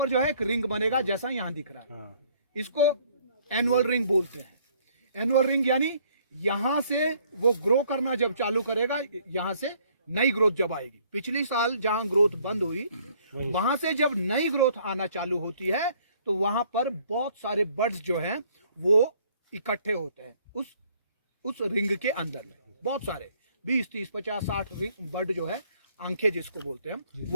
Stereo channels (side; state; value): both; inverted; correlation -0.62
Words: जो है एक रिंग बनेगा जैसा यहाँ दिख रहा है, इसको एनुअल रिंग बोलते हैं। एनुअल रिंग यानी यहाँ से वो ग्रो करना जब चालू करेगा, यहाँ से नई ग्रोथ जब आएगी। पिछली साल जहां ग्रोथ बंद हुई, वहां से जब नई ग्रोथ आना चालू होती है तो वहां पर बहुत सारे बर्ड्स जो हैं वो इकट्ठे होते हैं उस रिंग के अंदर में। बहुत सारे 20, 30, 50, 60 बर्ड जो है, आंखें जिसको बोलते हैं,